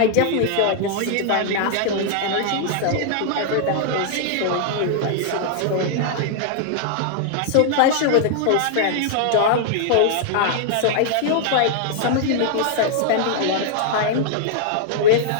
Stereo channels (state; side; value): different; both; correlation -0.01